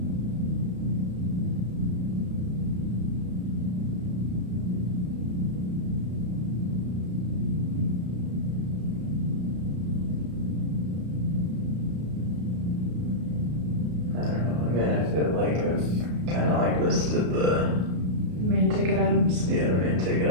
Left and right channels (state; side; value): late; left; 33 ms